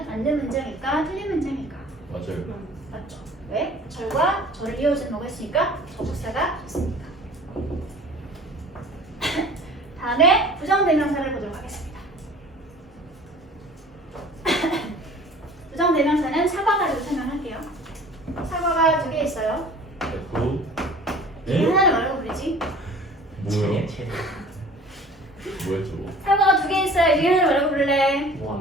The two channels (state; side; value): normal; both; correlation 0.46